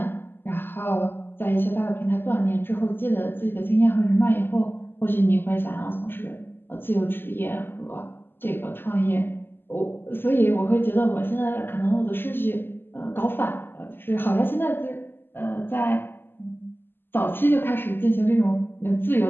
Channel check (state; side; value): late; right; 0.10 ms